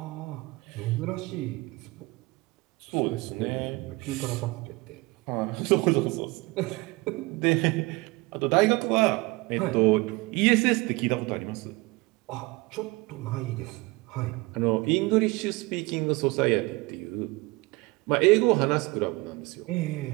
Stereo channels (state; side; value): quieter; left; 23.6 dB